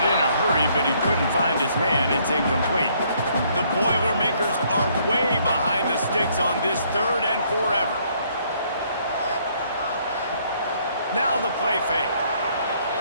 in a hurry, but he couldn't find his man. It's incomplete. The Boilermakers are way behind the sticks on this 3rd and forever. Now the play fake.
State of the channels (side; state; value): both; inverted; correlation -0.66